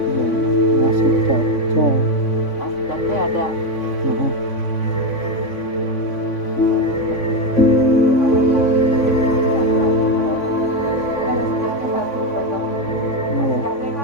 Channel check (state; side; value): late; right; 3.5 ms